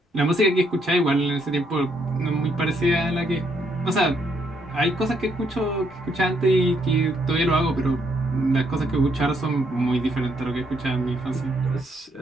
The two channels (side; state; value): both; normal; correlation 0.73